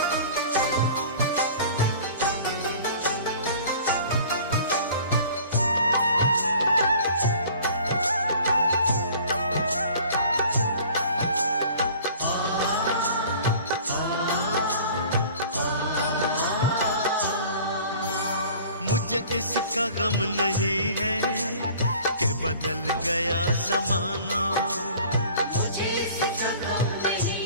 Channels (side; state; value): both; inverted; correlation -0.47